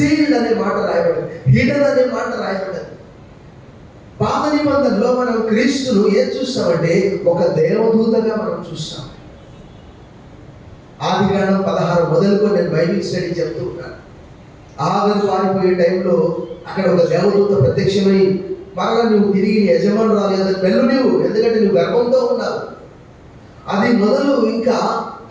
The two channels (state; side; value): identical; both; correlation 1.00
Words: అనే మాట రాయబడింది, హిడెన్ అనే మాట రాయబడింది. పాత నిబంధనలో మనం క్రీస్తును ఏం చూస్తామంటే ఒక దేవదూతగా మనం చూస్తాం. ఆదికాండం 16 మొదలుకొని నేను బైబిల్ స్టడీ చెప్తూ ఉన్నాను. ఆగరు పారిపోయే టైంలో అక్కడ ఒక దేవదూత ప్రత్యక్షమై మరలా నువ్వు తిరిగి యజమానురాలు కదా వెళ్ళు నువ్వు, ఎందుకంటే నువ్వు గర్భంతో ఉన్నావు. అది మొదలు ఇంకా